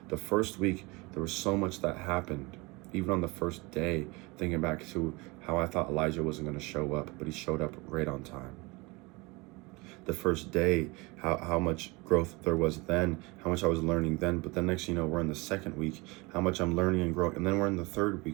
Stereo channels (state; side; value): quieter; left; 25.5 dB